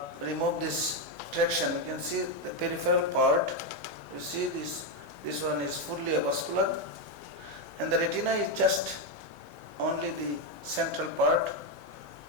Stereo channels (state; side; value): normal; both; correlation 0.06